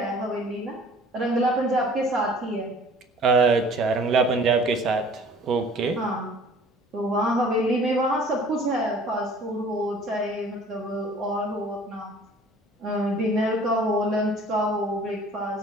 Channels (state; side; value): normal; both; correlation 0.50